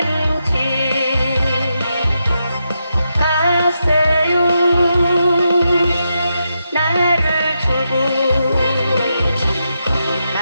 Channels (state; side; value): inverted; both; correlation -0.85